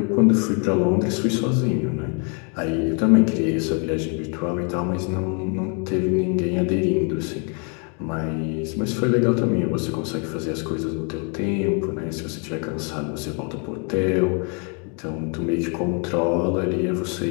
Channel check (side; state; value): right; quieter; 37.6 dB